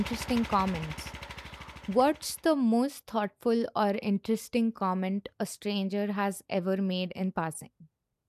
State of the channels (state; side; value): identical; both; correlation 1.00